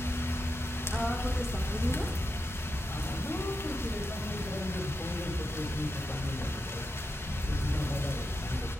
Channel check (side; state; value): both; normal; correlation 0.87